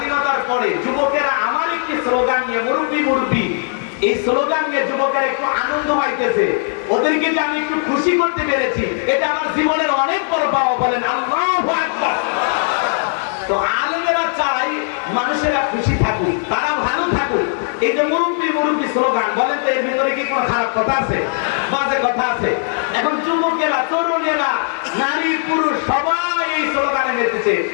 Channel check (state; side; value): silent; right; 64 dB below the other